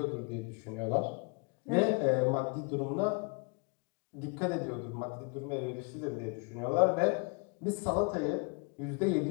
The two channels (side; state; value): right; quieter; 33.4 dB